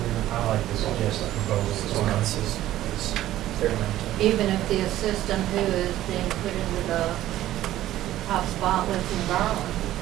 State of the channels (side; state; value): left; quieter; 14.0 dB